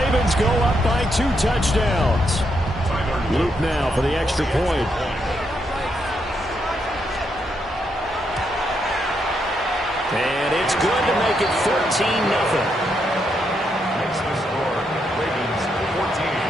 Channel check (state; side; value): normal; both; correlation 0.79